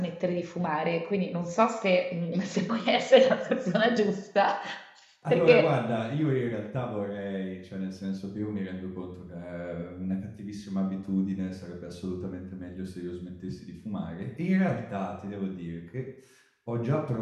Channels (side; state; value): both; identical; correlation 1.00